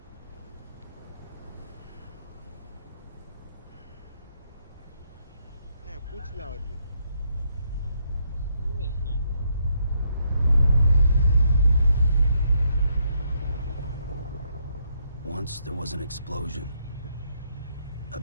பூச்சிலாம் வருது. Once there was an explosion. A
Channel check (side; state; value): both; inverted; correlation -0.74